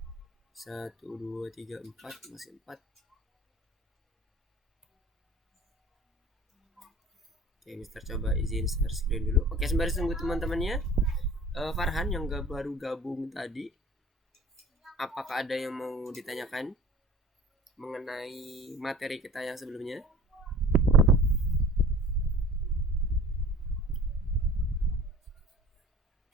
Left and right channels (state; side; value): normal; both; correlation 0.45